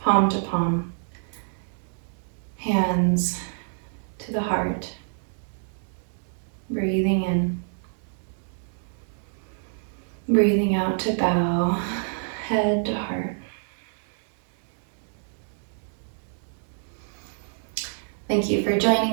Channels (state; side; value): silent; left; digital silence